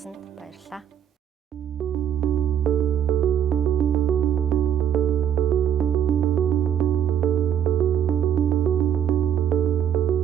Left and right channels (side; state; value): left; quieter; 9.3 dB